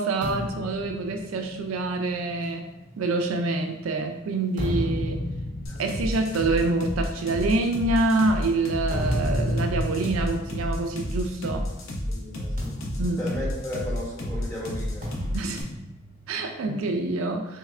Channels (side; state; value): both; normal; correlation 0.51